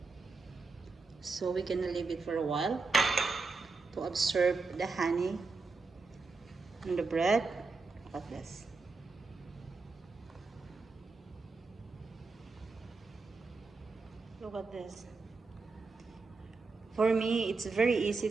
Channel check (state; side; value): quieter; left; 4.1 dB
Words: So we're gonna leave it for a while to absorb the honey on the bread. Look at this. Look at this. For me, it's very easy